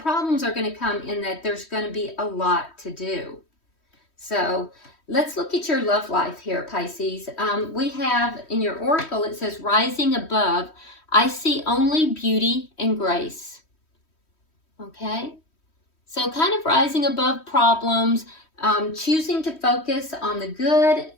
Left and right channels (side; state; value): right; late; 3.1 ms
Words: are going to come in that there's going to be a lot to do. So let's look at your love life here, Pisces. We have in your oracle, it says, rising above, I see only beauty and grace. Okay? So kind of rising above problems, choosing to focus on the good